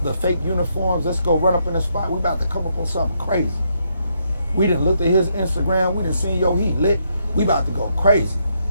the fake uniforms, let's go run up in the spot, we about to come up on something crazy. We done looked at his Instagram, we done seen, yo, he lit, we about to go crazy.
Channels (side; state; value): both; inverted; correlation -0.76